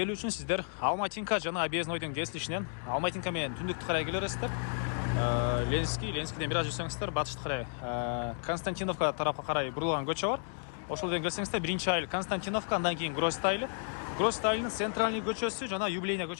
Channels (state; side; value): silent; right; 56 dB below the other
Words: үчүн сиздер Алматинка жана Объезднойдун кесилишинен Алматинка менен түндүктү карай келерсиздер. Ленскиден бир аз жүрсөңүздөр батышты карай Константиновка тарапка карай бурулган көчө бар. Ошол жерден келсеңиздер биринчи айыл Константиновка, андан кийин Гроздь айылы. Гроздь айылынын центральный көчөсү жана Юбилейный